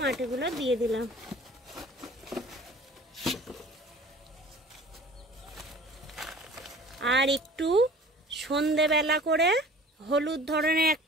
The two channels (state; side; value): normal; both; correlation 0.45